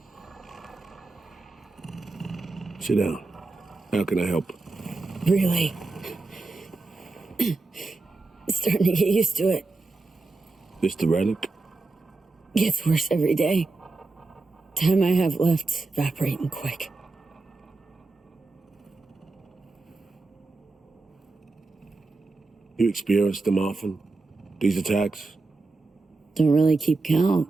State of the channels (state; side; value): quieter; left; 3.6 dB